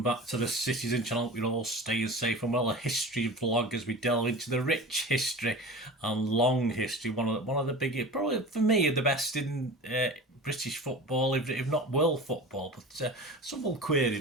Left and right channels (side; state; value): both; normal; correlation 0.34